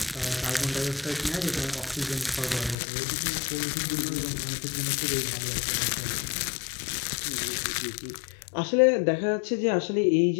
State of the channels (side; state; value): right; drops out; at 2.8 s